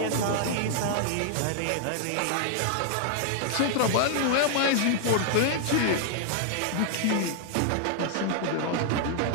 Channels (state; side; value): different; both; correlation 0.00